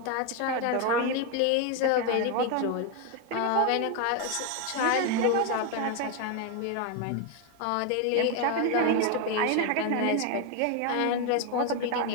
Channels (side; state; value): both; different; correlation 0.02